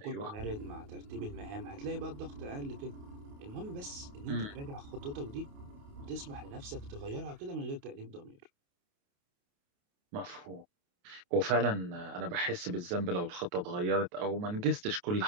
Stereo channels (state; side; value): late; left; 28 ms